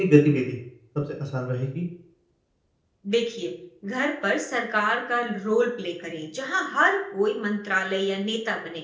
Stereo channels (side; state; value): both; identical; correlation 1.00